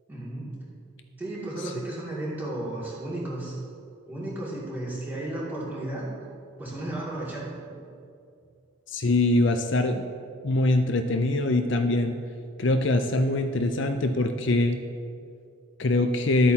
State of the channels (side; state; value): both; normal; correlation 0.55